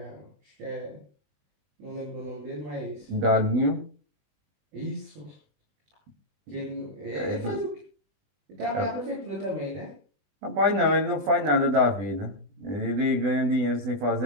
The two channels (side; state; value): left; late; 20 ms